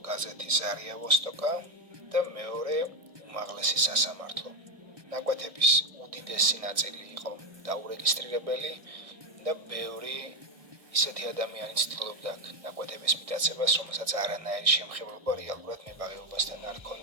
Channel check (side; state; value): left; late; 1.6 ms